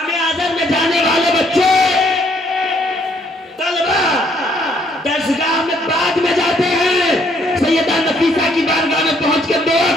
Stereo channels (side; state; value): both; normal; correlation 0.67